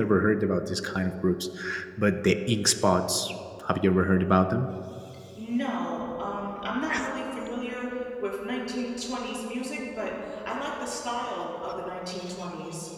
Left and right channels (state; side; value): identical; both; correlation 1.00